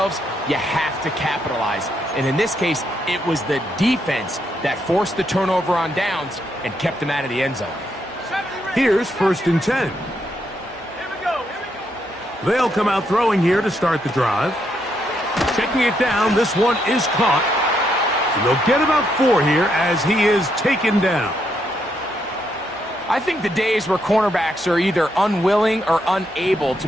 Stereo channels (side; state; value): both; normal; correlation 0.77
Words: you have to capitalize. And in this case, it was the defense that forced the turnover on downs and kept them out of the end zone. Here's first and 10. They'll come out throwing here to start the drive. Checking it down, this one is caught. And they'll get about 4 here as he is taken down. I think the days where cornerbacks are either unwilling or unable to